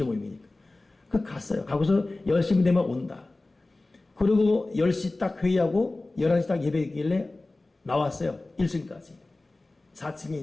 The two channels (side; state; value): right; quieter; 3.0 dB